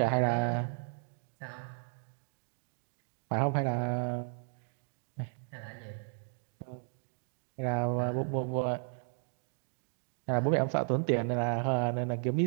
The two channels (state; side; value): silent; left; 55 dB below the other